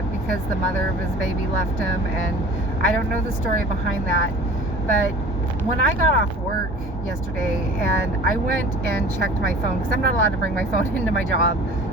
because the mother of his baby left him, and I don't know the story behind that. But when I got off work yesterday and I went and checked my phone, because I'm not allowed to bring my phone into my job,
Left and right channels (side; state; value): both; normal; correlation 0.43